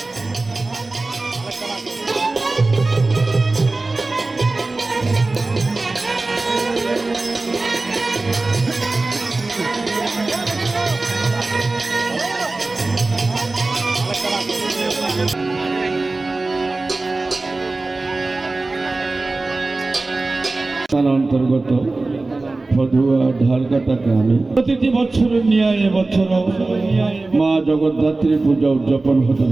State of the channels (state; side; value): quieter; left; 3.3 dB